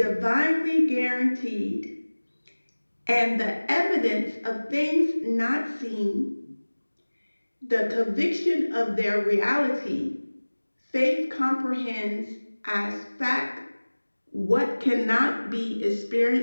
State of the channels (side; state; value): both; inverted; correlation -1.00